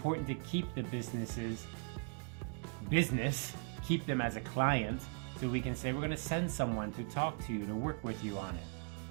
to keep the business, keep them as a client, so we can say we're going to send someone to talk to you, to work with you on it.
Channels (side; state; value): left; quieter; 39.3 dB